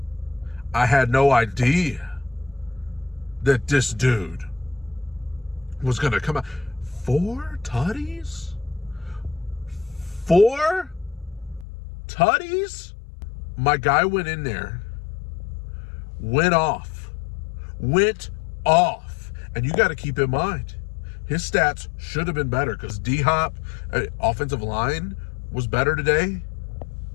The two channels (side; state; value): right; drops out; at 11.7 s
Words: I had no idea that this dude was going to come out. 4 tutties? 4 tutties? My guy went in there, went off. And you got to keep in mind, his stats should have been better because D-Hop, offensive line, was better today.